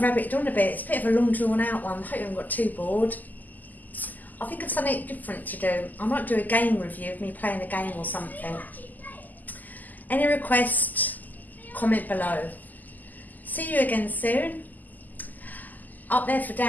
rabbited on a bit. It's a bit of a long drawn out one. I hope you haven't got too bored. I think of something different to do. I might do a game review of me playing a game or something. Any request, comment below. See you again soon. Up there for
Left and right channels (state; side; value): late; right; 0.083 ms